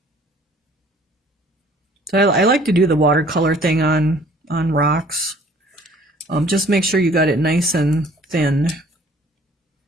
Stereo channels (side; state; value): both; normal; correlation 0.55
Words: So I like to do the watercolor thing on rocks. Just make sure you got it nice and thin.